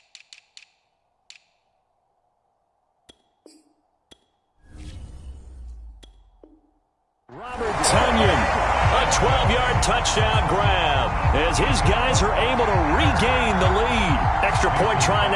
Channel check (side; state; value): both; identical; correlation 1.00